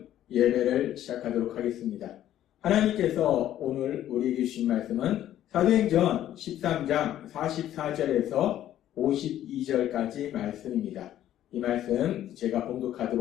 예배를 시작하도록 하겠습니다. 하나님께서 오늘 우리에게 주신 말씀은 사도행전 13장 44절에서 52절까지 말씀입니다. 이 말씀 제가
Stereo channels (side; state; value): right; quieter; 12.1 dB